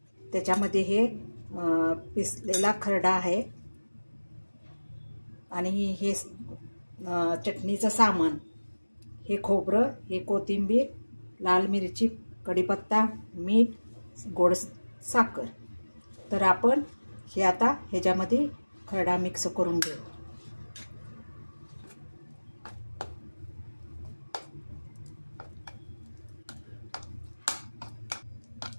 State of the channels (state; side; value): inverted; both; correlation -1.00